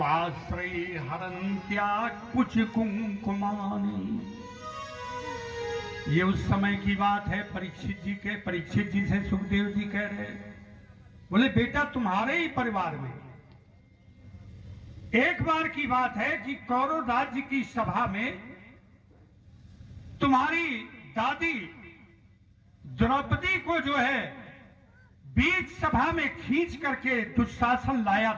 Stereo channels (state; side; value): identical; both; correlation 1.00